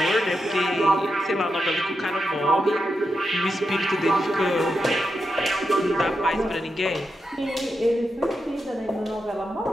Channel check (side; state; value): both; normal; correlation 0.87